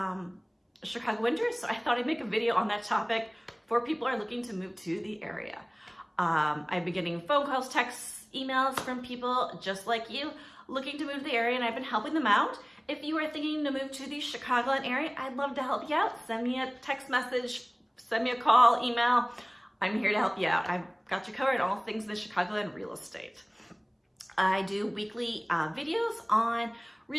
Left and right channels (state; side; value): identical; both; correlation 1.00